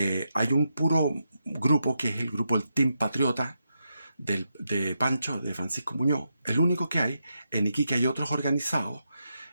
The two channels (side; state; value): both; inverted; correlation -0.85